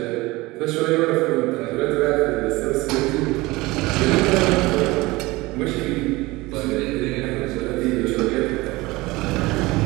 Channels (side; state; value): left; quieter; 21.2 dB